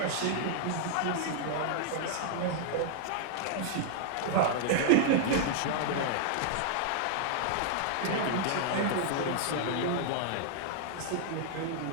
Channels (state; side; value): different; both; correlation -0.01